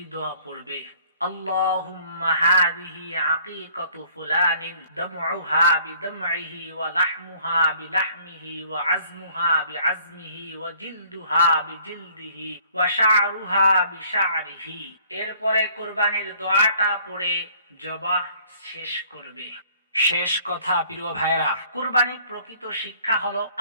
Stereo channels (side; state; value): both; inverted; correlation -0.57